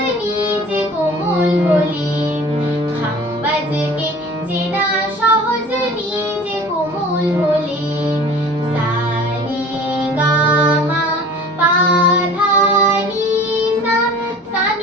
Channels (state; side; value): normal; both; correlation 0.44